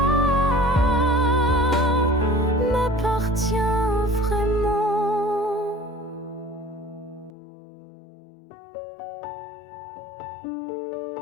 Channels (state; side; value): drops out; right; at 7.3 s